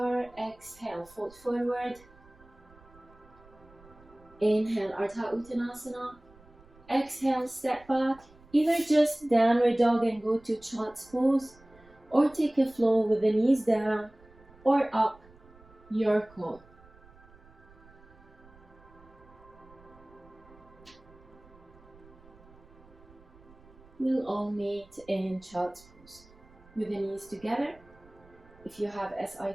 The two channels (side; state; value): right; noise; rumble, 25 dB below the sound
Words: Exhale, fold forward. Inhale, Ardha Uttanasana. Exhale, step back. Either just downward dog and go to child's pose, or take a flow with the knees down or up your core. We'll all meet in child's pose with the knees together. If you have SI